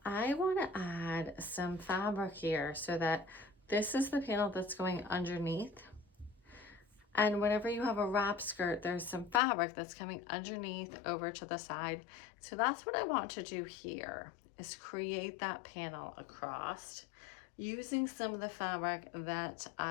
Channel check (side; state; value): right; drops out; at 9.4 s